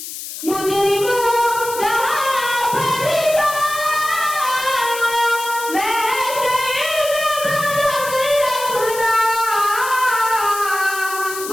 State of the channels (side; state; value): left; noise; hiss, 9 dB below the sound